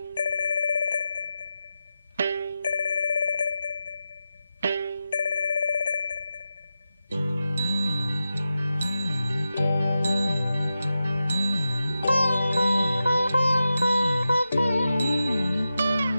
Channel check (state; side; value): inverted; both; correlation -0.91